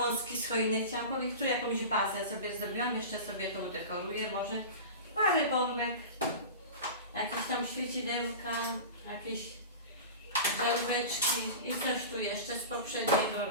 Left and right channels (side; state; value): both; inverted; correlation -0.31